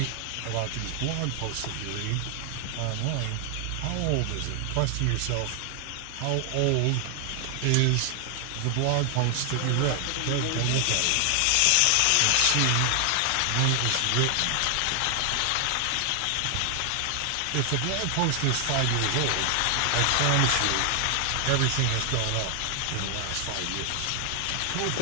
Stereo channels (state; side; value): different; both; correlation 0.00